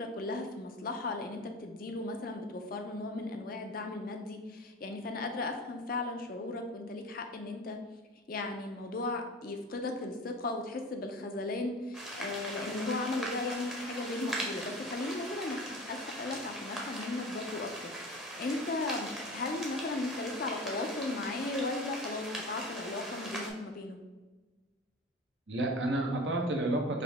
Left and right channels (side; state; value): both; normal; correlation 0.36